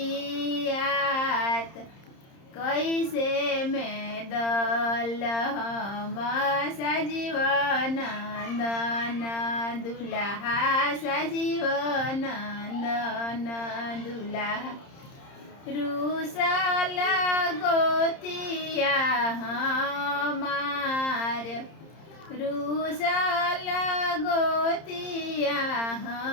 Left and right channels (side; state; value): right; late; 30 ms